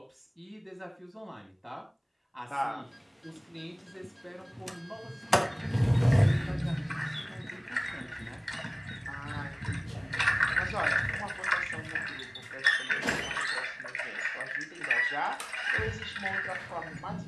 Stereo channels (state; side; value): identical; both; correlation 1.00